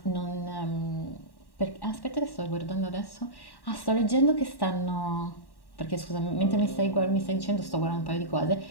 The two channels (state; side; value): late; right; 1.1 ms